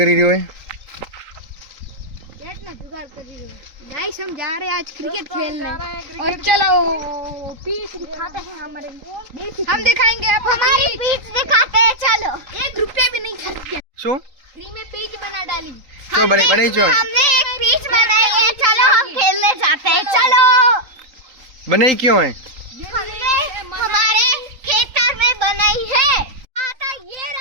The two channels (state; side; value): late; left; 3.8 ms